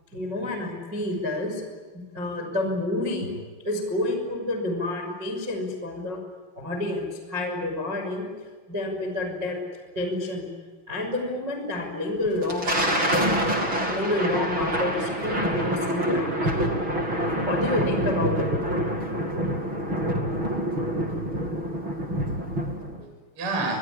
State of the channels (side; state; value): left; late; 6.1 ms